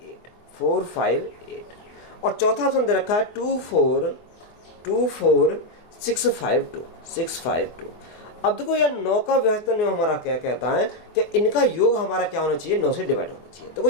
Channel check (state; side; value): late; right; 24 ms